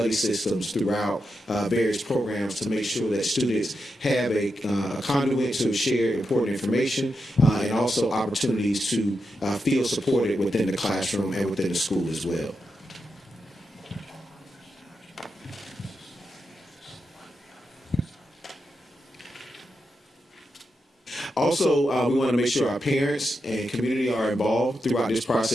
systems throughout various programs to make sure that students have a conduit to share important information and also opportunities to feel supported within the classroom and within the school as well. Also, we want to make sure our parents and community are involved throughout this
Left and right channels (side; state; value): both; normal; correlation 0.87